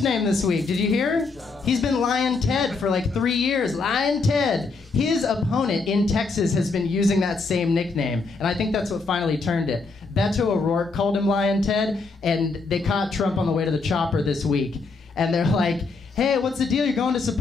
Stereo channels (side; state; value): right; quieter; 4.0 dB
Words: this week. Did you hear? He's been Lion Ted for like 3 years. Lion Ted. His opponent in Texas has been using that same nickname, and I think that's what finally turned it. Beto O'Rourke called him Lion Ted, and they caught Trump on the way to the chopper this week, and they're like, hey, what's the deal? You're going to